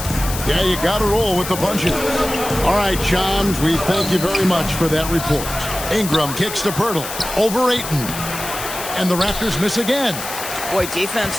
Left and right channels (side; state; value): left; noise; hiss, 8 dB below the sound